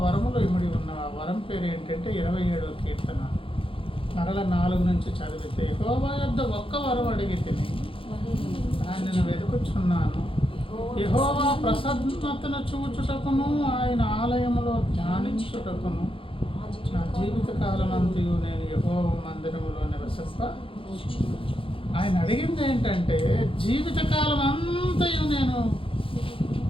వరములో ఇమిడి ఉన్న ఆ వరం పేరు ఏంటంటే 27వ కీర్తన మరల 4 నుంచి చదివితే, యెహోవా యొద్ద ఒక్క వరం అడిగి తిని దానిని వెతుకుచున్నాను, యెహోవా ప్రసన్నతను చూచుటకును ఆయన ఆలయములో ధ్యానించుటకును నా జీవిత కాలమంతయు నేను యెహోవా మందిరములో నివసింప. ఆయన అడిగింది ఏంటంటే, జీవితకాలం అంతయు నేను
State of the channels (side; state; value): right; late; 0.26 ms